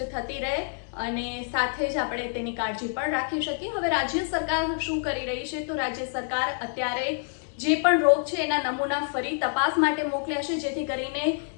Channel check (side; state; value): right; silent; digital silence